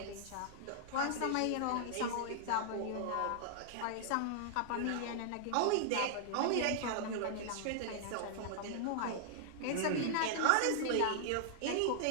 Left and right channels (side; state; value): both; different; correlation -0.01